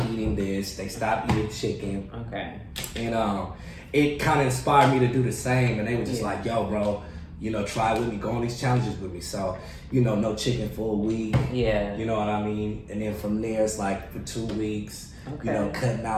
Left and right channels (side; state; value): both; identical; correlation 1.00